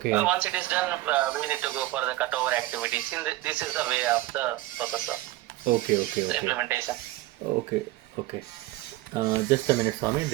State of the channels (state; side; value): quieter; left; 17.3 dB